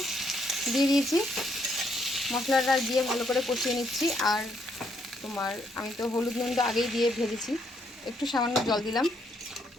দিয়ে দিয়েছি, মশলাটা দিয়ে ভালো করে কষিয়ে নিচ্ছি। আর তোমার আমি তো হলুদ নুনটা আগেই দিয়ে ভেজেছি, একটু সামান্য জল দিলাম।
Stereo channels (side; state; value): both; normal; correlation 0.73